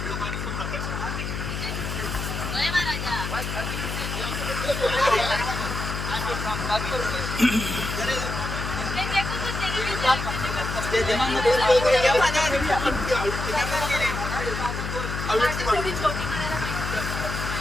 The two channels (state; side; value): noise; left; hum, 4 dB below the sound